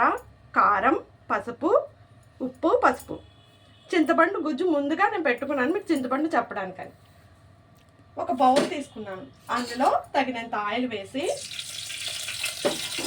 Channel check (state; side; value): identical; both; correlation 1.00